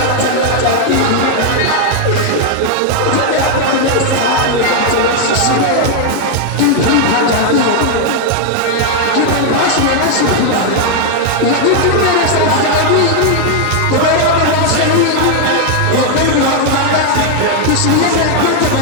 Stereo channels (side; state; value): both; different; correlation 0.00